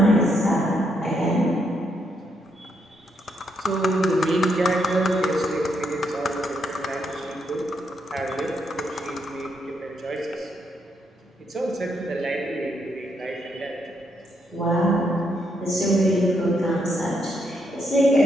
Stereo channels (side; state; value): both; normal; correlation 0.77